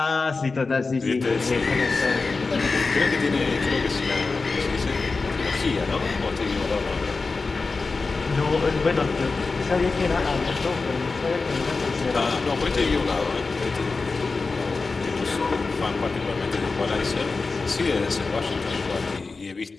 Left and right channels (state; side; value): quieter; right; 4.0 dB